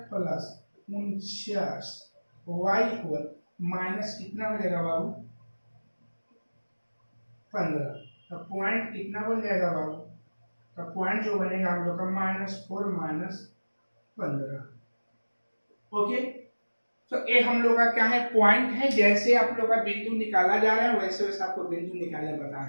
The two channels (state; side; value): inverted; both; correlation -1.00